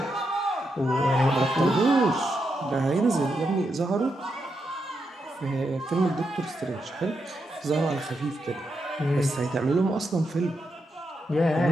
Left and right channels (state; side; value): normal; both; correlation 0.84